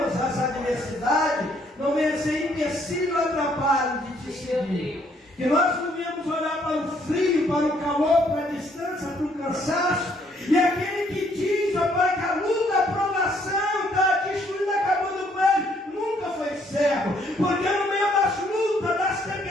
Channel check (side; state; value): both; normal; correlation 0.67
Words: as adversidades não venham ser empecilho ou atrapalho de Te seguir. Que nós não venhamos olhar para o frio, para o calor, para a distância, para o cansaço. E aquele que diz, ó Pai, que a luta, a provação está destruindo, acabando com ele, nunca foi cego. Porque no meio das lutas, das